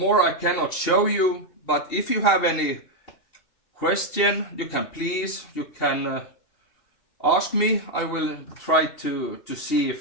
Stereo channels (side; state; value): right; late; 2.7 ms